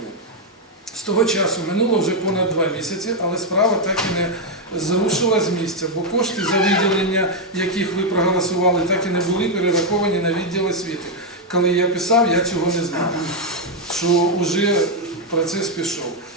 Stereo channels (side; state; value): both; normal; correlation 0.01